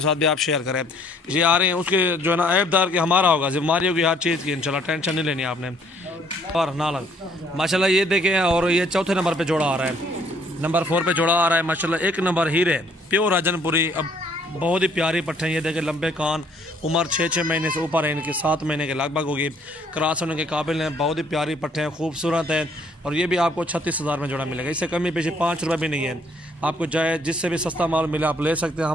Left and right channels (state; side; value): normal; both; correlation 0.63